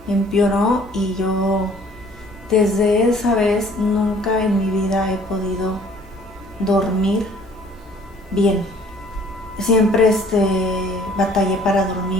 y yo desde esa vez nunca en mi vida he podido dormir bien. Siempre batallé para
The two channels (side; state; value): both; normal; correlation 0.56